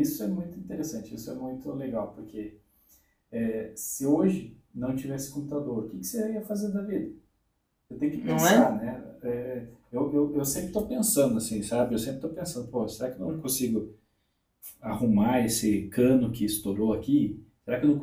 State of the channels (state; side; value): identical; both; correlation 1.00